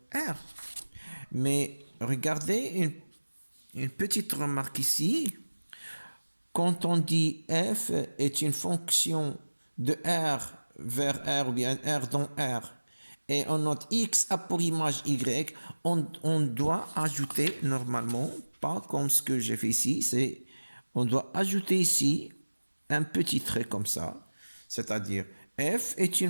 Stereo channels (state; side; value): inverted; both; correlation -1.00